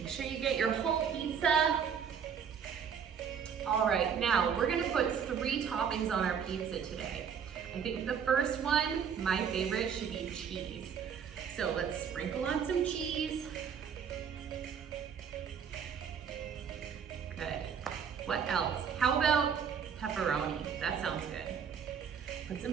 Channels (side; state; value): left; quieter; 7.3 dB